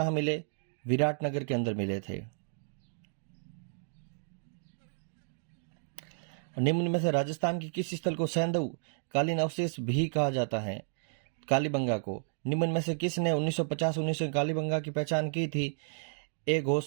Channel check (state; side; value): silent; left; digital silence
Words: मिले? विराटनगर के अंदर मिले थे। निम्न में से राजस्थान के किस स्थल को सैंधव कालीन अवशेष भी कहा जाता है? कालीबंगा को। निम्न में से किसने 1950-19 कालीबंगा की पहचान की थी? ए